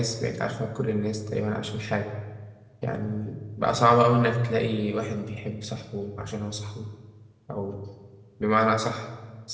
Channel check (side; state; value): both; identical; correlation 1.00